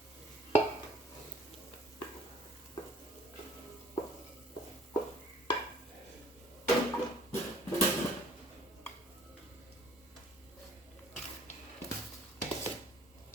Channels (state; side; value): normal; both; correlation 0.55